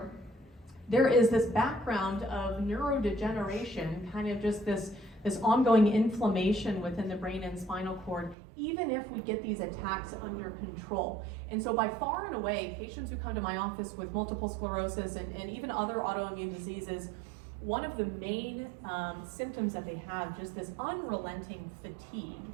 there is this background of neurodegeneration, kind of just this ongoing inflammation within the brain and spinal cord, even if we get these attacks under control. And so by far and away, patients who come to my office with multiple sclerosis and even other autoimmune diseases, one of the main symptoms that they have, just this unrelenting fatigue.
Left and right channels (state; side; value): drops out; left; at 8.3 s